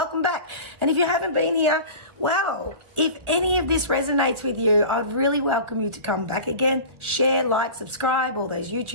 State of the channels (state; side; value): late; left; 1.4 ms